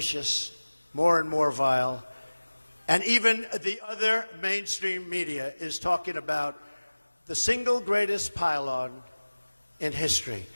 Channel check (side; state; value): both; inverted; correlation -1.00